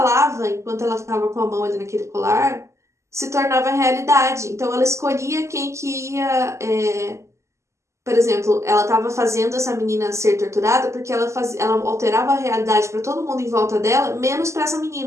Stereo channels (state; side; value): late; left; 0.14 ms